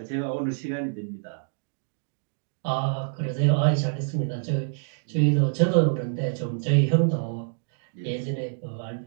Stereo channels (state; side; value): silent; left; digital silence